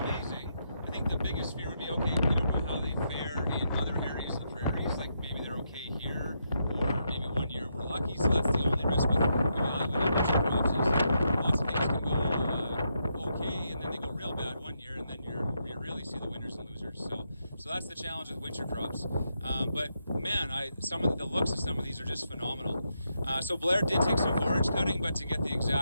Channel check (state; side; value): inverted; both; correlation -0.81